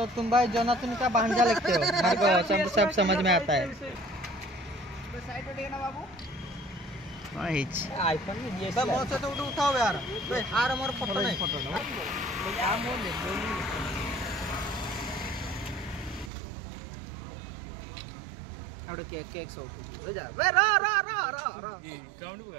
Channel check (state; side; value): drops out; left; at 16.3 s